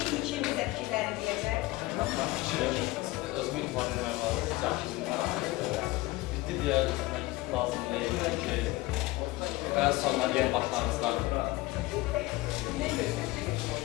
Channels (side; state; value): right; quieter; 19.9 dB